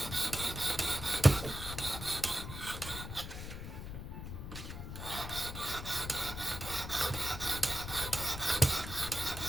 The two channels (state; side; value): noise; left; rumble, 8 dB below the sound